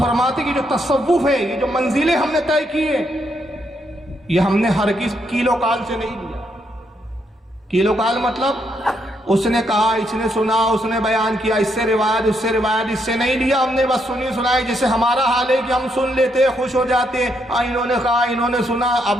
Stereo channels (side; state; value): both; normal; correlation 0.76